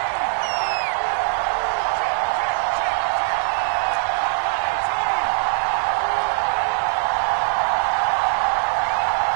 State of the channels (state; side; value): silent; left; digital silence